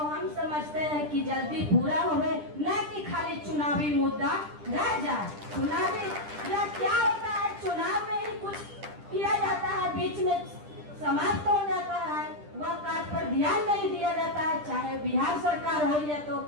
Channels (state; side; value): late; left; 10 ms